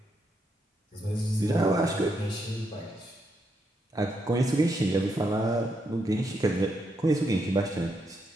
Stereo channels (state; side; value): normal; both; correlation 0.79